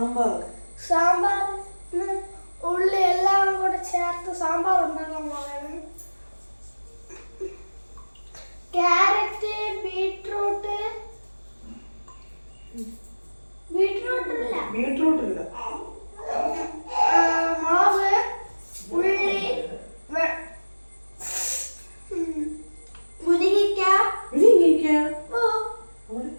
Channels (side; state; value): both; inverted; correlation -1.00